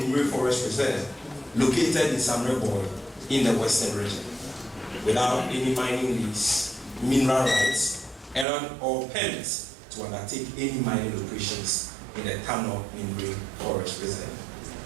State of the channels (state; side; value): drops out; left; at 8.5 s